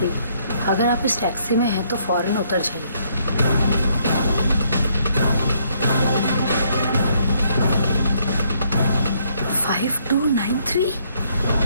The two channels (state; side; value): inverted; both; correlation -0.69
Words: अगर आप इस टैक्सी में हैं तो फौरन उतर जाइए। 5293।